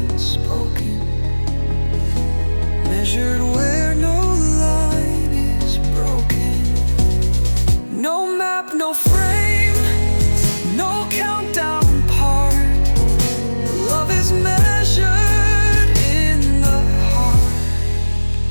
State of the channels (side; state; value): both; inverted; correlation -1.00